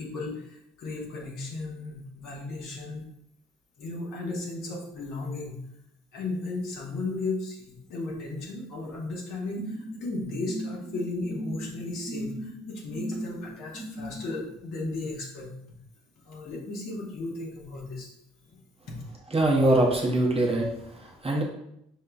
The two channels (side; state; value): both; normal; correlation 0.68